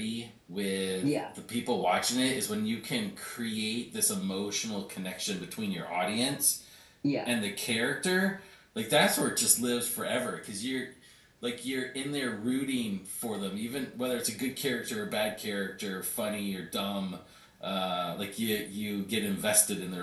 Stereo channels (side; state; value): both; identical; correlation 1.00